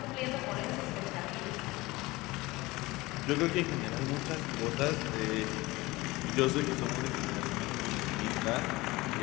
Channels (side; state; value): right; quieter; 21.0 dB